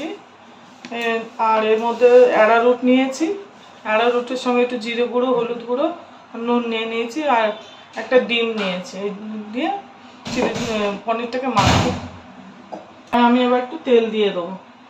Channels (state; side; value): identical; both; correlation 1.00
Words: আর এর মধ্যে অ্যারারুট নিয়েছি, অ্যারারুটের সঙ্গে একটু জিরে গুঁড়ো, হলুদ গুঁড়ো, নুন নিয়ে নিয়েছি আর একটা ডিম নিয়েছি। এই দিয়ে চিলি পনিরটাকে মাখবো। আমি এবার একটু তেল দিয়ে দেবো।